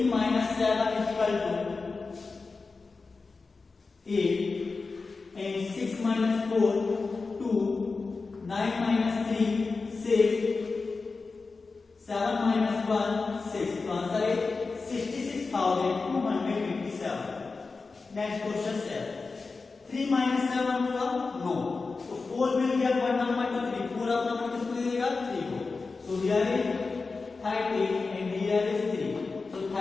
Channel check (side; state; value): right; quieter; 4.2 dB